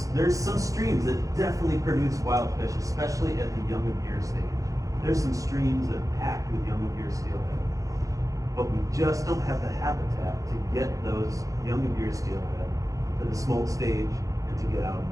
some streams that definitely produce wild fish, especially at the young of year stage. There's some streams that are packed with young of year steelhead, but we just don't have the habitat to get those young of year steelhead to the smolt stage and to get out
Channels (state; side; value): late; left; 0.16 ms